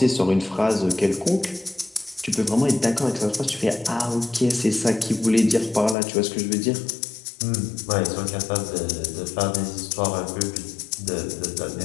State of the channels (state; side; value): drops out; right; at 6.0 s